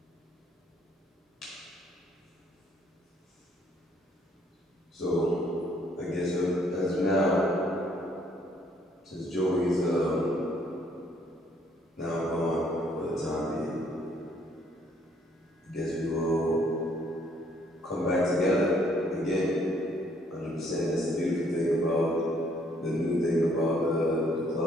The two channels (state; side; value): normal; both; correlation 0.66